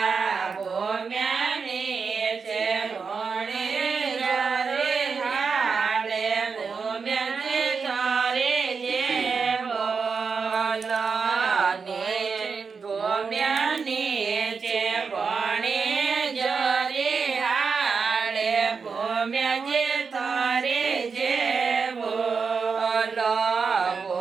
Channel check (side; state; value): left; quieter; 5.3 dB